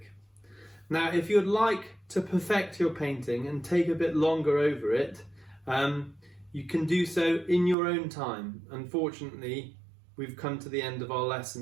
Now, if you'd like to perfect your painting and take a bit longer over it, you can do so in your own time. Unfortunately, we've come to the end of our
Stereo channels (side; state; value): left; drops out; at 7.8 s